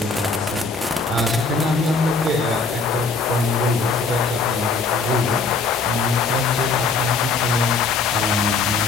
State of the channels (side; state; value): right; quieter; 4.3 dB